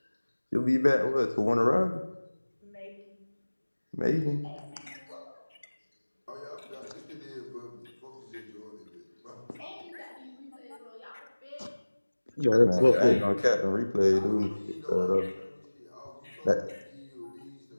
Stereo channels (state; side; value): inverted; both; correlation -1.00